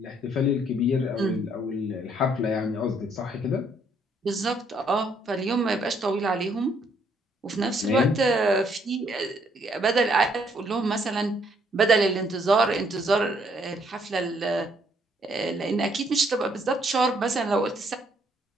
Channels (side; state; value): both; normal; correlation 0.68